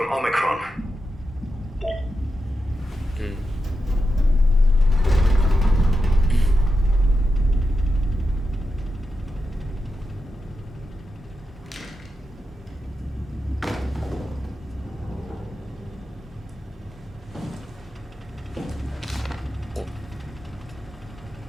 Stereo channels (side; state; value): both; normal; correlation 0.88